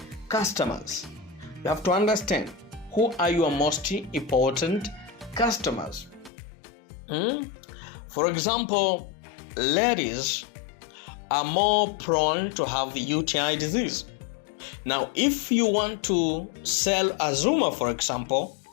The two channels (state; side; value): drops out; right; at 6.3 s